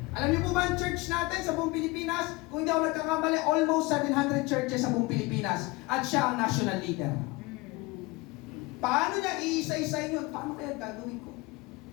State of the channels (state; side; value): quieter; right; 23.0 dB